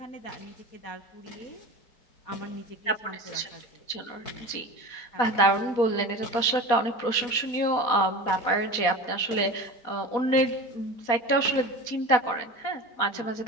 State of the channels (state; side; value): late; right; 4.2 ms